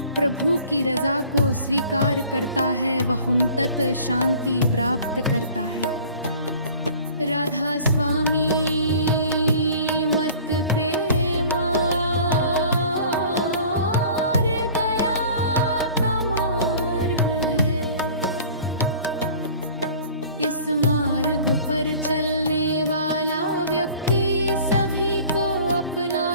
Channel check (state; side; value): inverted; both; correlation -0.47